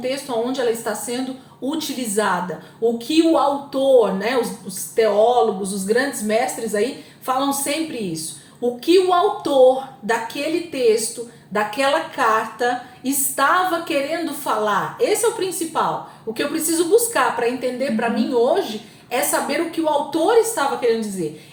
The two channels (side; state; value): both; identical; correlation 1.00